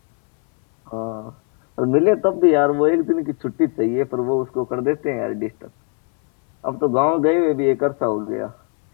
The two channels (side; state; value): right; quieter; 39.7 dB